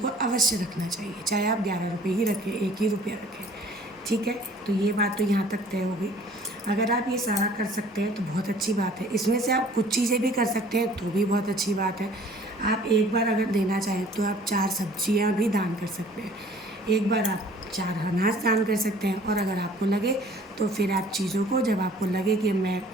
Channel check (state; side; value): normal; both; correlation 0.52